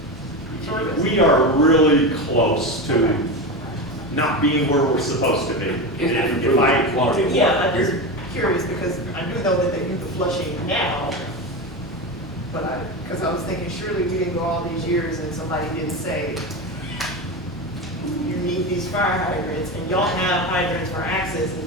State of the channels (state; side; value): normal; both; correlation 0.20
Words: service. We are really close to not being where we're supposed to be. If I, Quality of Yeah, I'm water. just curious, because I do know that they do the flushing now, but because I was thinking, surely we didn't go all these years and somebody didn't say, you need these fire hydrants, and y'all have hydrants for access